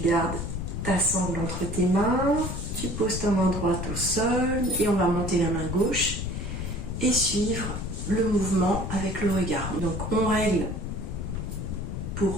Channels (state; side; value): noise; left; rumble, 5 dB below the sound